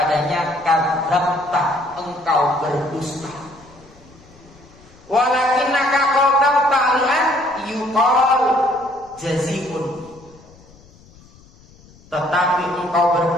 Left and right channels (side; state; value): left; noise; rumble, 26 dB below the sound